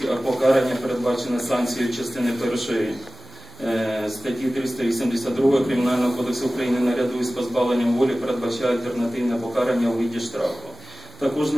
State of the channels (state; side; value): normal; both; correlation 0.97